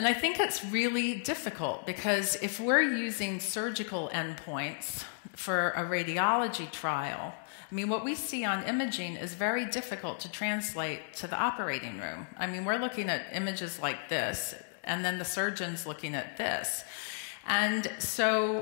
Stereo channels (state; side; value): silent; right; digital silence